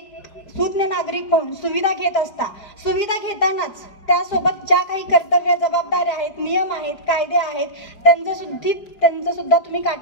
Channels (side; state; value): right; late; 4.9 ms